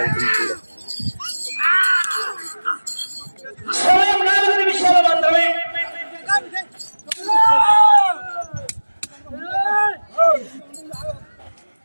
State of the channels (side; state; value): both; inverted; correlation -1.00